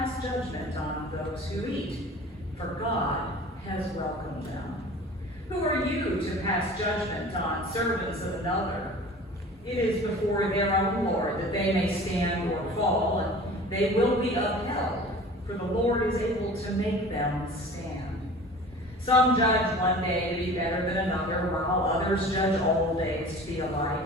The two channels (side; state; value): both; normal; correlation 0.42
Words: judgment on those who eat, for God has welcomed them. Who are you to pass judgment on servants of another? It is before their own Lord that they may stand or fall, and they will be upheld, for the Lord is able to make them stand. Some judge one day to be better than another, while others judge all days to be alike.